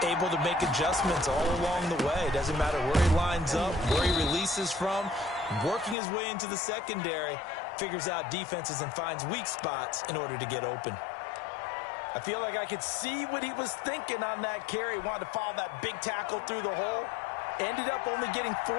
Able to make adjustments all along the way. Doesn't matter where he lines up, where he releases from. Working his way into the secondary, figures out defenses and finds weak spots in order to get open. I feel like I could see what he was thinking on that carry. Wanted to follow that big tackle through the hole. Ended up only getting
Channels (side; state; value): right; drops out; at 6.0 s